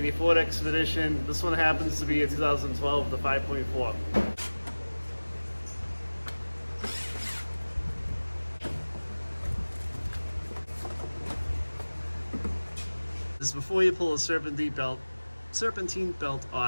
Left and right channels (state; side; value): inverted; both; correlation -1.00